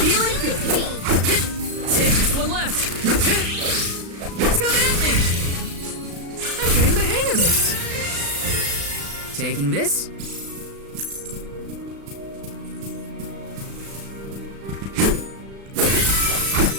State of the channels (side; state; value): left; late; 36 ms